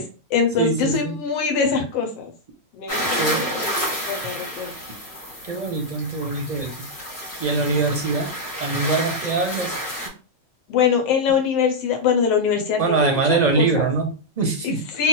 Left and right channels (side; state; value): right; late; 5.4 ms